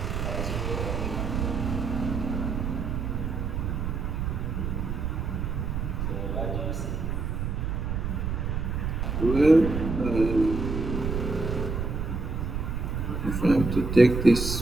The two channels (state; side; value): noise; right; rumble, 2 dB below the sound